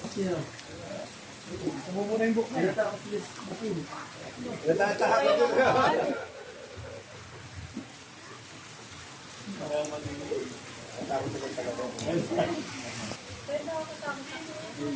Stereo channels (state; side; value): identical; both; correlation 1.00